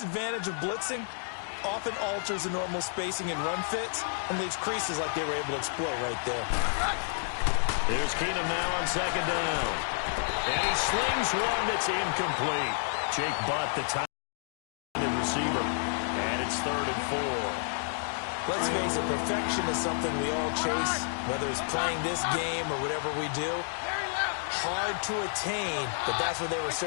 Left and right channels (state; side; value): silent; right; digital silence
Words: of blitzing often alters the normal spacing and run fits and leaves creases like they were able to exploit right there. Here's Keenum now on 2nd down. And he slings one that's incomplete. Jake Butt, the tight receiver. And it's 3rd and 4. Let's face it, perfection is something we all chase, whether it's playing this game or whatever we do. Hard to attain, but that's what they were